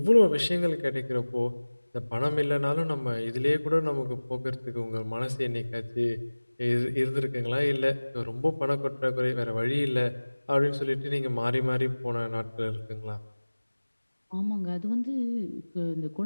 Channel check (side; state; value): both; inverted; correlation -1.00